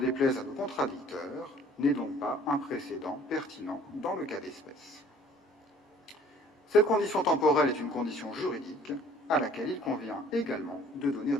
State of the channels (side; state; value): both; normal; correlation 0.54